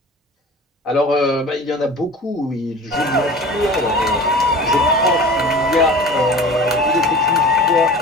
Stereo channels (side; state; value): both; normal; correlation 0.39